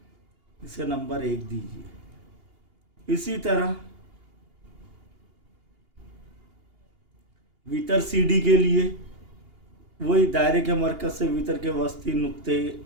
इसे नंबर 1 दीजिए। इसी तरह वितर सी डी के लिए वही दायरे के मरकज से वितर के वस्ती नुक्ते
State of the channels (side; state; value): left; late; 2.8 ms